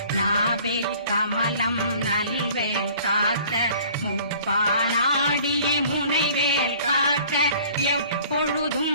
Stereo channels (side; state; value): both; inverted; correlation -0.51